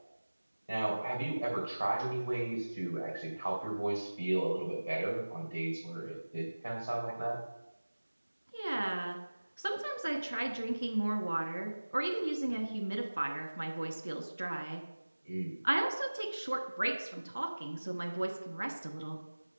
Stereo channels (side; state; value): both; inverted; correlation -1.00